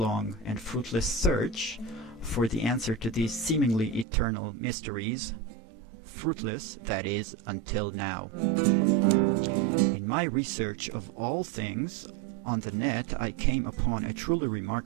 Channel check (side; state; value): left; drops out; at 4.0 s